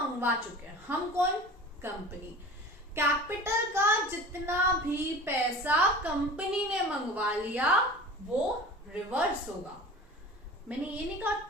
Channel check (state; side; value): normal; both; correlation 0.39